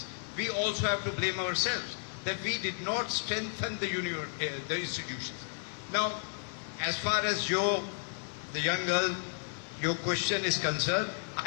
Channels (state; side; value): silent; right; digital silence